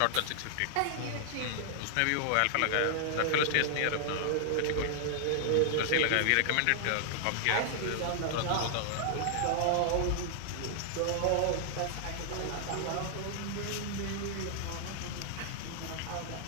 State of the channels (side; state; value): both; different; correlation -0.01